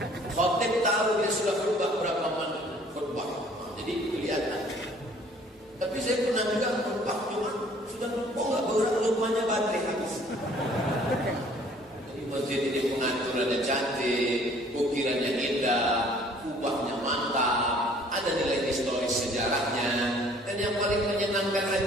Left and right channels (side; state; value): both; normal; correlation 0.56